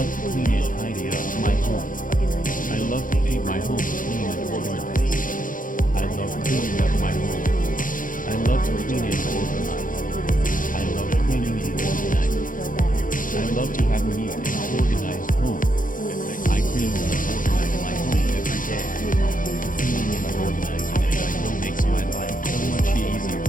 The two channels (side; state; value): right; late; 0.39 ms